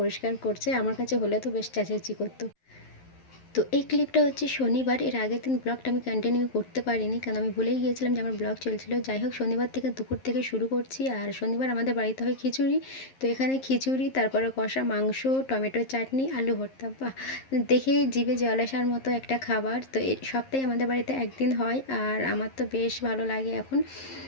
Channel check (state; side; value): late; right; 11 ms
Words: করছে। আমার কাছে হলে তো বেশ চেঁচামেচি করতো। তো এই ক্লিপটা হচ্ছে শনিবার, এর আগের দিন ব্লগটা আমি কন্টিনিউ করতে পারিনি, কারণ আমি ভুলেই গিয়েছিলাম যে আমার ব্লগ চলছিল। যাই হোক, শনিবার থেকে দুপুর থেকে শুরু করছি। আর শনিবার আমাদের বাড়িতে হয় খিচুড়ি। তো এখানে খিচুড়ি, তারপরে কষা মাংস, টমেটো চাটনি, আলু ভর্তা। বাহ, দেখেই জিভে জল আসার মতো একটা খাবার। তো এই সপ্তাহে আমাদের বাড়িতে একদিন হয়, আর আমার তো বেশ ভালো লাগে এখন।